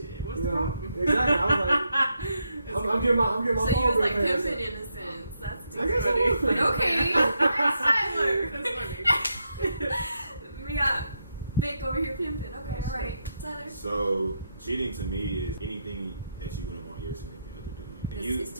what's you the know, problem? exactly. I was like, I'm getting my So phone you was bill like paid. pimping in a sense. That's too I guess I funny. was But pimping. okay. That's Tyler. That's funny. We got Vic over here pimping. Okay, Oh, alright. Tyler. So cheating to me is anything that you wouldn't want your significant other doing. Is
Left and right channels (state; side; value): inverted; both; correlation -0.82